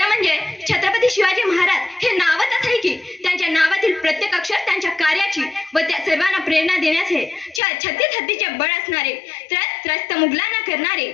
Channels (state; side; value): drops out; right; at 7.6 s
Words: म्हणजे छत्रपती शिवाजी महाराज हे नावच असं आहे की त्यांच्या नावातील प्रत्येक अक्षर त्यांच्या कार्याची व त्या सर्वांना प्रेरणा देण्याचे, छत्तीस हत्तीचे बळ असणारे, त्रस्त मुघलांना करणारे,